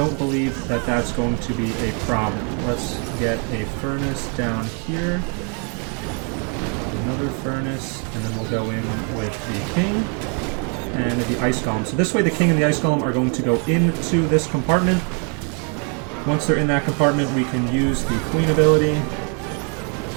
believe that that's going to be a problem. Let's get a furnace down here. Another furnace, and then we'll go in with the king and the ice golem. So this way the king and the ice golem are going to go into this compartment. Once they're in that compartment, we can use the queen ability.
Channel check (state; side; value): quieter; left; 38.4 dB